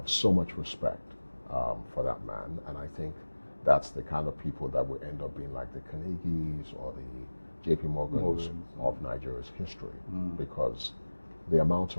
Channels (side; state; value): both; inverted; correlation -1.00